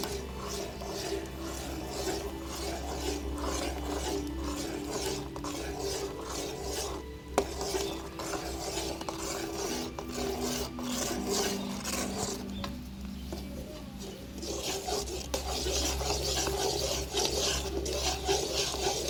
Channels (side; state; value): both; identical; correlation 1.00